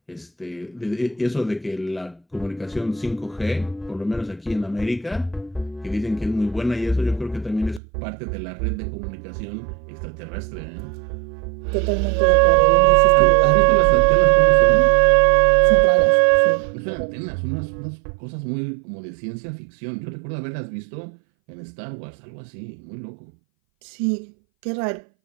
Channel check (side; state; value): left; drops out; at 7.8 s